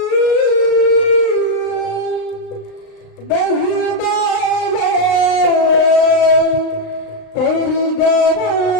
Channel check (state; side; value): late; right; 35 ms